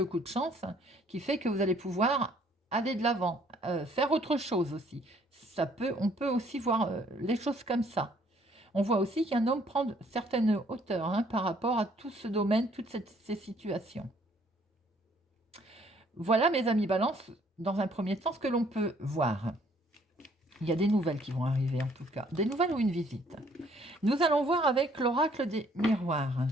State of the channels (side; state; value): both; normal; correlation 0.62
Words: coup de chance, qui fait que vous allez pouvoir aller de l'avant, faire autre chose aussi. On peut aussi voir les choses comme ça. On voit aussi qu'un homme prend certaines hauteurs, hein, par rapport à tout ce domaine, toutes ces situations. Voilà, mes amis Balance, dans un premier temps, ce que l'on peut voir. Il y a des nouvelles qui vont arriver, en tout cas. Des nouvelles ou une visite. Nous allons voir avec l'oracle des miroirs.